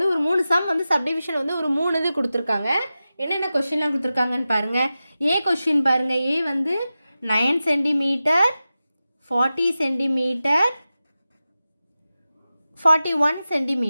ஒரு 3 சம் வந்து சப்டிவிஷன் வந்து ஒரு 3 இது கொடுத்துருக்காங்க. என்னென்ன கொஷின்லாம் கொடுத்துருக்காங்கன்னு பாருங்கள். ஏ கொஷின் பாருங்கள். ஏ வந்து 9 சென்டிமீட்டர், 40 சென்டிமீட்டர், 41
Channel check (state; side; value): inverted; both; correlation -0.94